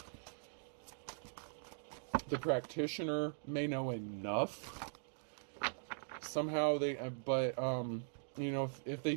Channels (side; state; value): left; silent; digital silence